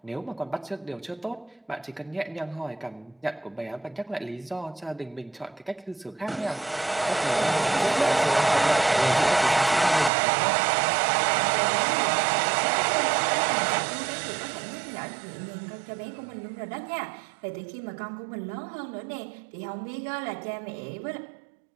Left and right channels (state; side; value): drops out; left; at 10.1 s